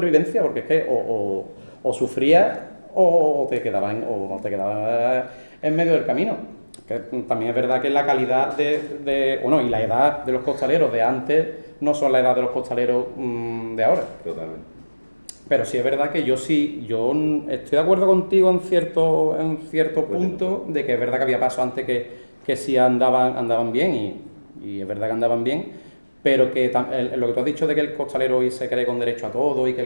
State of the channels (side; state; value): both; inverted; correlation -1.00